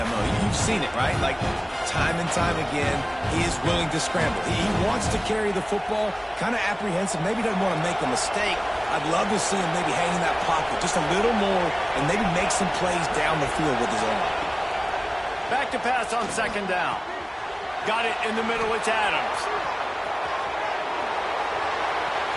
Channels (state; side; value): identical; both; correlation 1.00